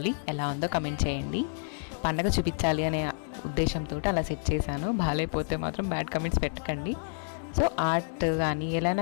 ఎలా ఉందో కమెంట్ చేయండి. పండగ చూపించాలి అనే ఉద్దేశంతో అలా సెట్ చేశాను. బాగాలేకపోతే మాత్రం బ్యాడ్ కమెంట్స్ పెట్టకండి. సో ఆర్ట్ కానీ ఎలా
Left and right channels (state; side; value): silent; right; 58 dB below the other